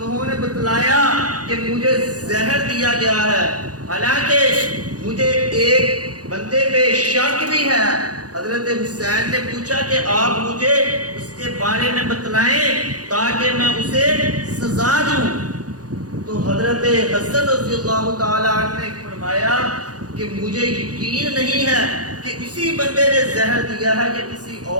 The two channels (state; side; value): late; left; 0.68 ms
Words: نے بتلایا کہ مجھے زہر دیا گیا ہے، حالانکہ مجھے ایک بندے پہ شک بھی ہے۔ حضرت حسین نے پوچھا کہ آپ مجھے اس کے بارے میں بتلائیں تاکہ میں اسے سزا دوں۔ تو حضرت حسن رضی اللہ تعالیٰ عنہ نے فرمایا کہ مجھے یقین نہیں ہے کہ اسی بندے نے زہر دیا ہے یا کسی